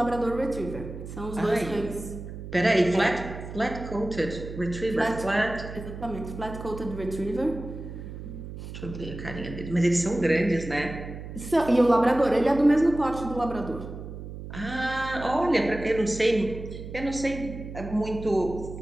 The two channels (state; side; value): noise; right; hum, 10 dB below the sound